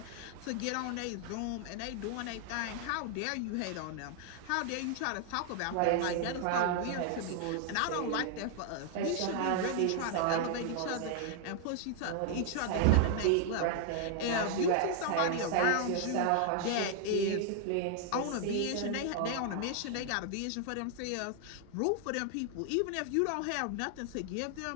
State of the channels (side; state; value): both; different; correlation 0.00